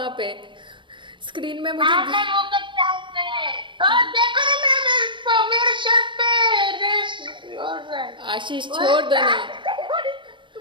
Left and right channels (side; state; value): left; late; 0.24 ms